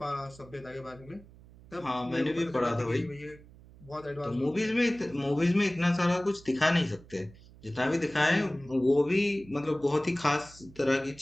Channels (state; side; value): noise; right; hum, 22 dB below the sound